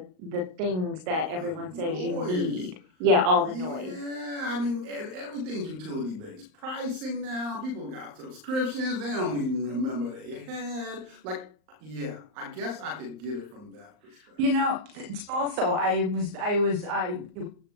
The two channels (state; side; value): late; left; 38 ms